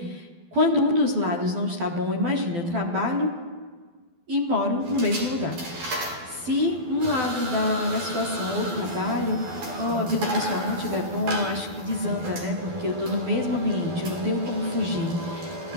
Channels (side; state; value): left; late; 12 ms